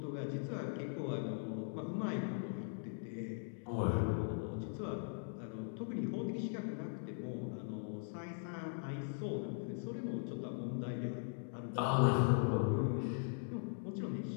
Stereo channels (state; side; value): silent; right; digital silence